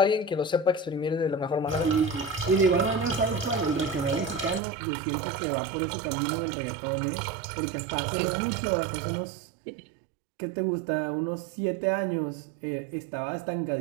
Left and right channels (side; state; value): left; drops out; at 4.6 s